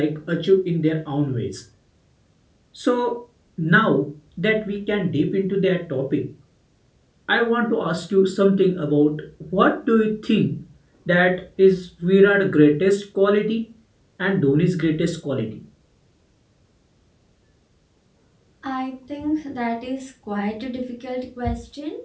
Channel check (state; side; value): identical; both; correlation 1.00